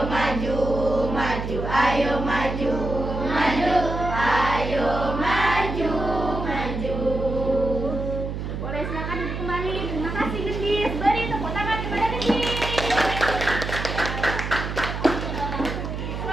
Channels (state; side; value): noise; right; hum, 5 dB below the sound